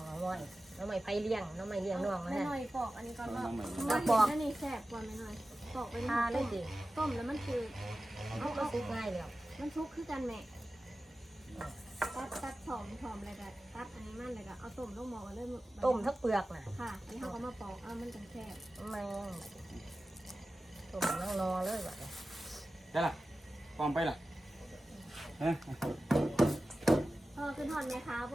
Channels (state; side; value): normal; both; correlation 0.95